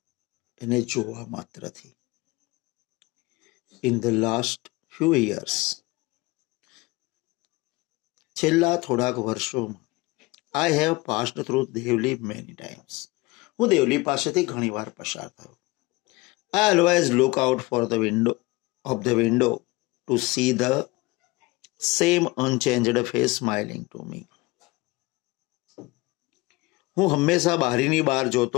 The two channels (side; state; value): right; quieter; 22.5 dB